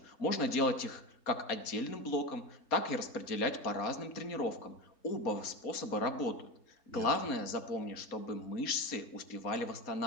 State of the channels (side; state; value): right; late; 4.2 ms